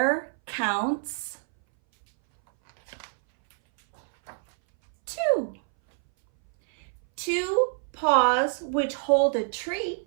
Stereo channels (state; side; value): silent; left; 60 dB below the other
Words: counts 2. 2 paws which hold a